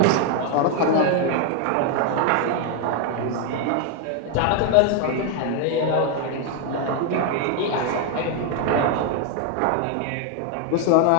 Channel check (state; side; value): different; both; correlation 0.01